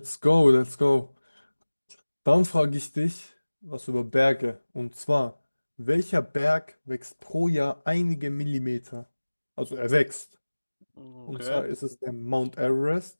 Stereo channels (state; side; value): inverted; both; correlation -1.00